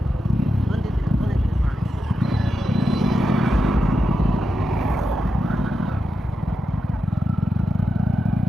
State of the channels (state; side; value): normal; both; correlation 0.88